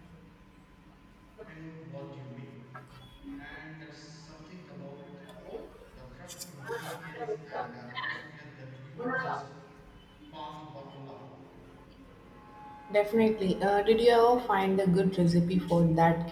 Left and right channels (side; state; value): both; identical; correlation 1.00